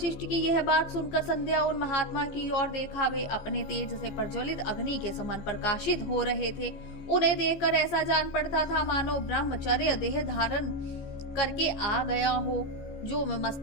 की यह बात सुनकर संध्या उन महात्मा की ओर देखा। वे अपने तेज से प्रज्वलित अग्नि के समान प्रकाशित हो रहे थे। उन्हें देखकर ऐसा जान पड़ता था मानो ब्रह्मचर्य देह धारण करके आ गया हो। जो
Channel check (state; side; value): late; right; 15 ms